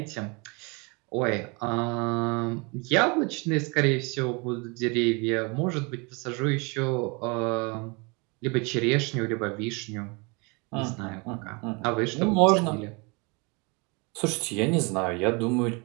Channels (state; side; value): quieter; left; 29.7 dB